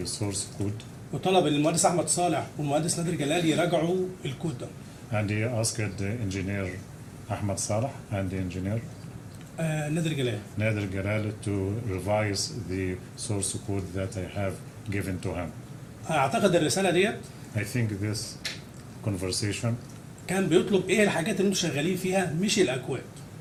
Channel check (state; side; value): identical; both; correlation 1.00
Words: source code. وطلب المهندس أحمد صالح والمهندس نادر جلال يراجعوا الكود ده. And he asked the engineer Ahmed Salah and the engineer نادر جلال. Nader Jalal to revise the source code that I have given to him. اعتقد الرساله ديت I think this conversation, كان بيطلب ايه الحاجات اللي انتوا شغالين فيها مش الاكواد.